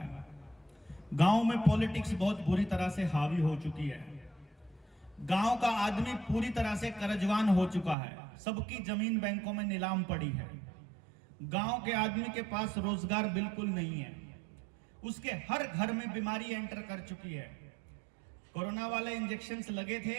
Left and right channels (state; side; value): drops out; left; at 8.0 s